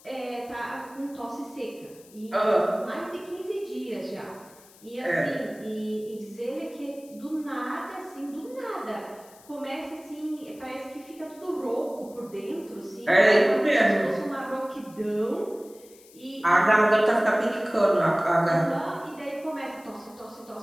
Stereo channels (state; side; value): noise; left; hiss, 24 dB below the sound